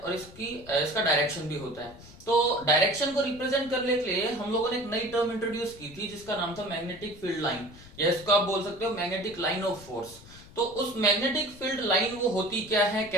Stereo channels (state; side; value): noise; left; rumble, 20 dB below the sound